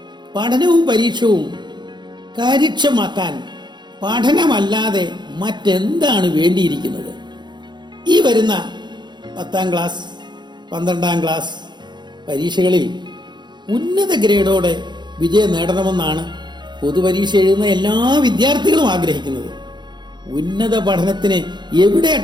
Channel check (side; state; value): left; late; 0.21 ms